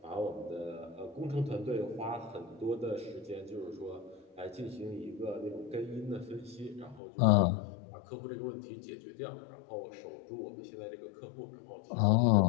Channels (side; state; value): right; drops out; at 7.0 s